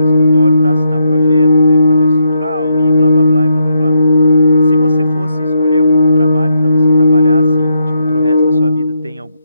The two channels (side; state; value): both; inverted; correlation -0.79